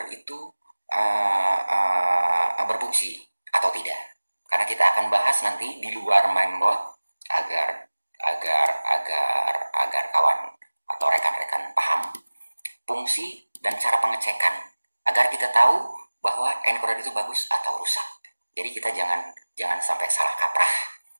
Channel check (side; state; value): both; inverted; correlation -1.00